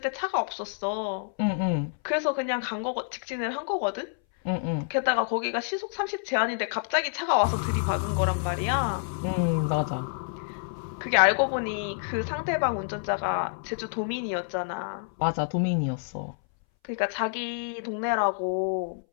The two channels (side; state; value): right; silent; 59 dB below the other